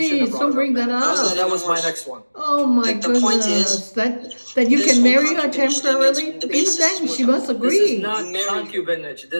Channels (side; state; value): both; inverted; correlation -1.00